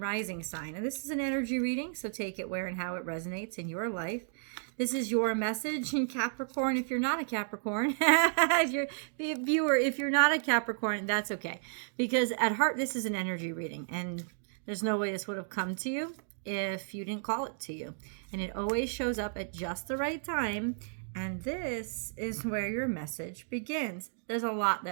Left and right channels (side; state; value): left; silent; digital silence